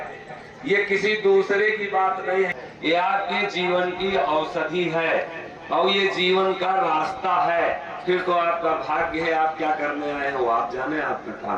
ये किसी दूसरे की बात नहीं है, ये आपके जीवन की औषधि है और ये जीवन का रास्ता है। फिर तो आपका भाग्य है, आप क्या करने आए हो आप जाने, आपका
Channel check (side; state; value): both; identical; correlation 1.00